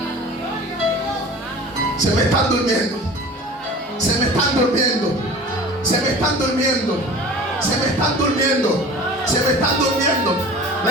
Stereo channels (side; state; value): both; normal; correlation 0.40